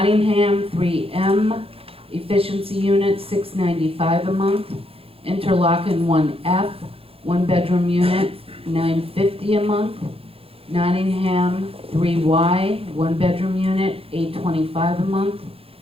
3M, efficiency unit, $695 a month. Interlaken, 1F, one-bedroom unit, $950 a month. Nottingham, 3Y, one-bedroom unit, $825 a month.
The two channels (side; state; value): left; late; 0.27 ms